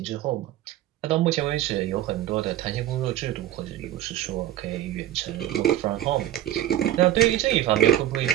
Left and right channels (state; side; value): quieter; left; 12.9 dB